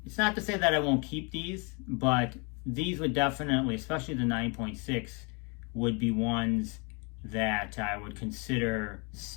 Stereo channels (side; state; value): right; quieter; 32.7 dB